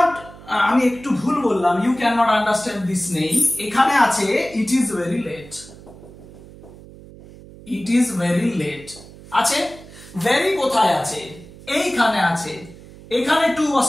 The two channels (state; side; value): noise; right; hum, 19 dB below the sound